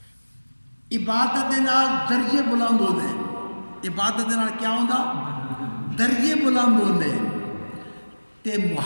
عبادت دے نال درجے بلند ہوندے عبادت دے نال کیا ہوندا درجے بلند ہوندے تے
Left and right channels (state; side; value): inverted; both; correlation -1.00